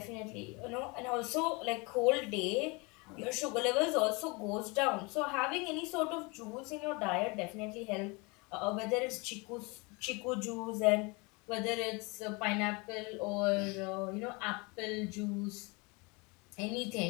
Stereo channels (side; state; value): right; quieter; 28.1 dB